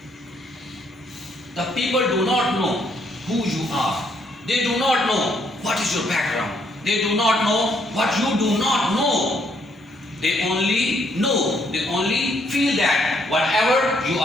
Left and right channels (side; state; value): both; normal; correlation 0.71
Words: The people do not know who you are. They do not know what is your background. They do not know what you do not know. They only feel that whatever you